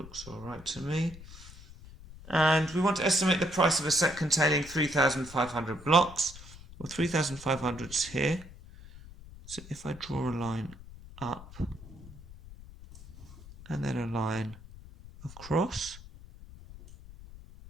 all right to me. And we want to estimate the price of a set containing 3,500 blocks. Well, 3,500 is here. So if I draw a line up and then a line across,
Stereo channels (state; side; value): noise; left; rumble, 17 dB below the sound